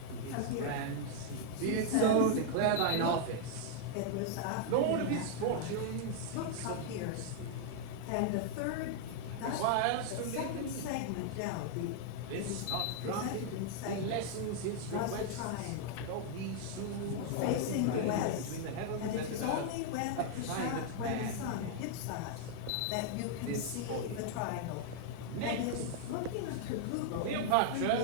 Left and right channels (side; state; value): both; different; correlation 0.00